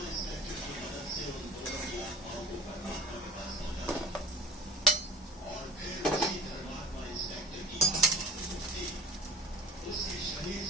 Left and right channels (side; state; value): both; normal; correlation 0.40